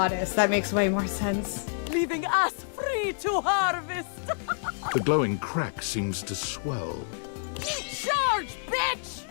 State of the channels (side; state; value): right; silent; 59 dB below the other